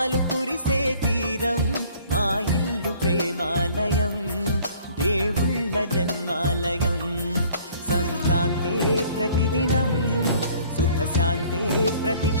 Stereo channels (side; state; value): both; inverted; correlation -0.55